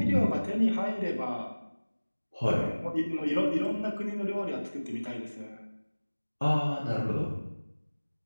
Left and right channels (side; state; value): both; inverted; correlation -1.00